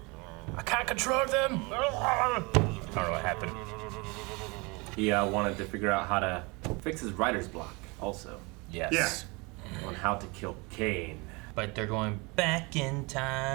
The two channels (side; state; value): left; quieter; 27.4 dB